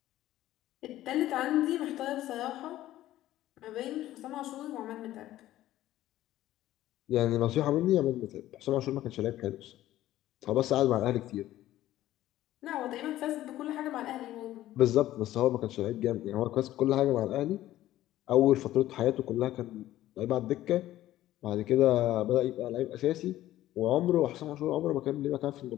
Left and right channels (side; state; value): right; quieter; 14.3 dB